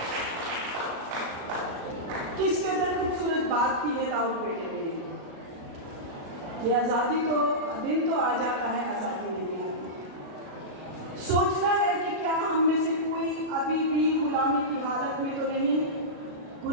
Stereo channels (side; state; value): left; late; 37 ms